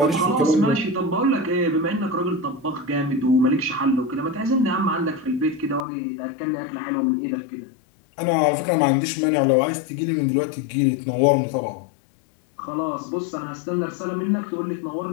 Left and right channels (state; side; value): drops out; right; at 5.9 s